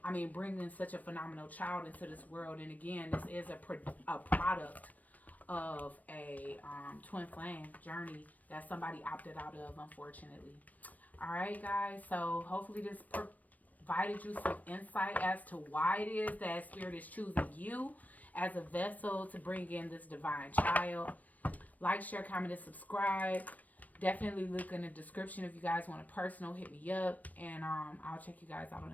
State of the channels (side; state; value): right; late; 0.075 ms